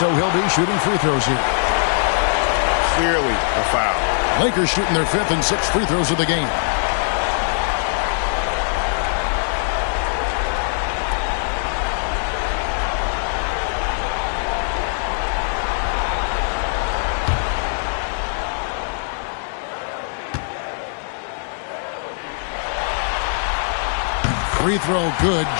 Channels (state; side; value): silent; right; digital silence